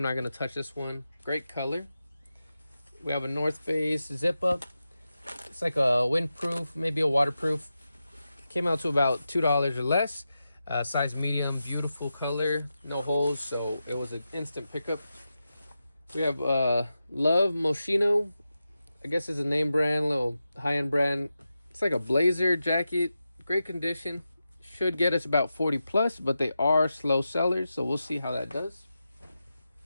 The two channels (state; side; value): inverted; both; correlation -0.90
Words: not gonna touch this one. Great color. We have a North Face zip up. It's like a windproof, maybe a waterproof. Came out to about $2 or less. Size medium, beautiful color, no holes, so it was an instant pickup. We have Love Moschino. I guess it's a name brand, little high-end brand. It's like a blazer jacket, great condition. Should get us about 40 plus, but they are slow sellers, so we'll see how that does.